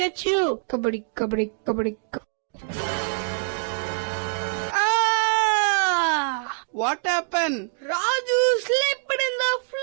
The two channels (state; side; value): silent; left; 59 dB below the other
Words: you. Kabaddi, kabaddi, kabaddi, kabaddi. Ah! What happened? Raju slipped in the